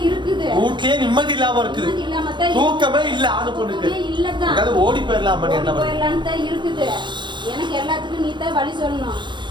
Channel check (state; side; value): late; left; 0.23 ms